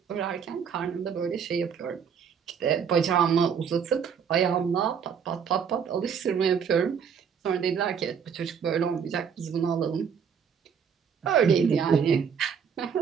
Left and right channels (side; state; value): left; quieter; 7.0 dB